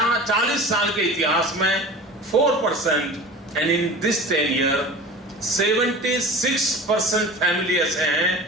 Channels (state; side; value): normal; both; correlation 0.37